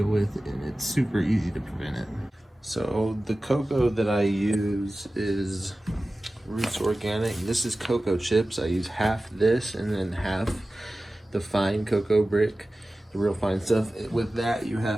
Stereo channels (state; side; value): normal; both; correlation 0.96